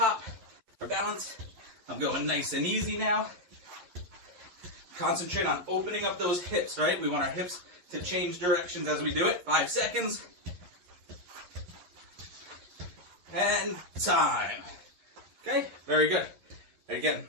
for balance. I'm going nice and easy now. Concentrate on opening up those hips, right? We want our hips to change directions as we do it. 5 seconds. And time. Okay, very good. Again,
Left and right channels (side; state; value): left; late; 11 ms